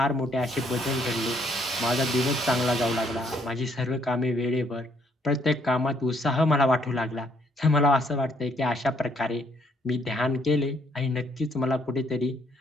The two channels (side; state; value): both; normal; correlation 0.68